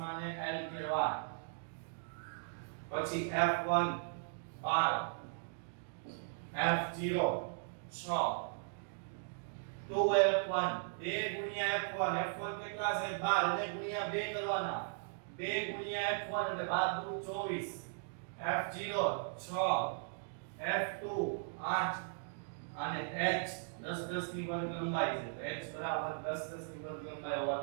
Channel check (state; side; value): silent; left; digital silence